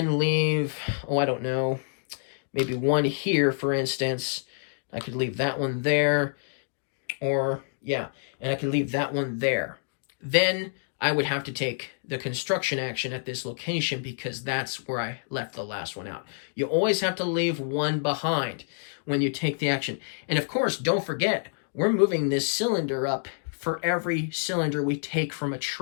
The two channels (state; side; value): silent; right; digital silence